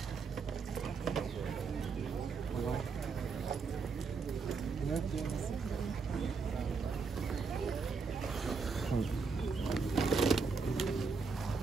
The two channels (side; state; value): left; quieter; 4.9 dB